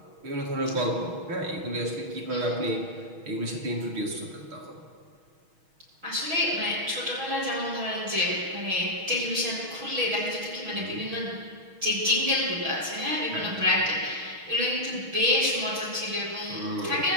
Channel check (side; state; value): left; late; 6.3 ms